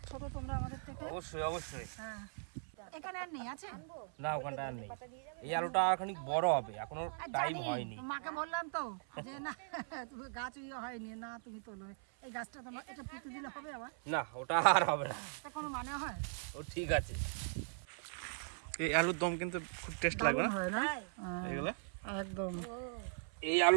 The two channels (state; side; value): silent; left; 51 dB below the other